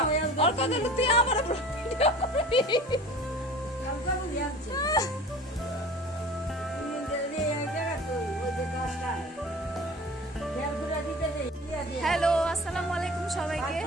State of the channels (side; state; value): both; normal; correlation 0.41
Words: তুই আমার হ্যালো আসসালামু আলাইকুম সবাইকে